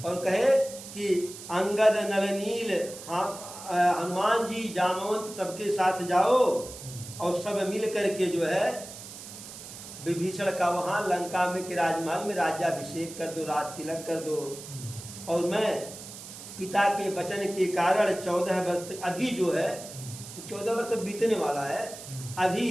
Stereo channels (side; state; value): right; noise; hiss, 13 dB below the sound